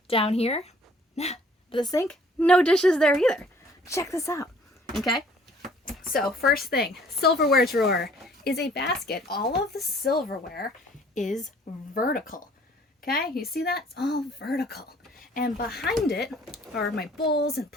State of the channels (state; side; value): normal; both; correlation 0.57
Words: down here. Nah. But the sink? No dishes there either. Check this out. Okay. So first thing, silverware drawer is a basket. All of the silverware is vertical. Okay, you see that? It's all vertical. And behind it are my bowls and